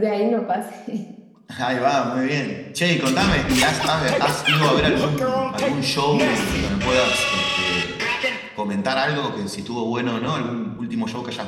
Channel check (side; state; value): both; identical; correlation 1.00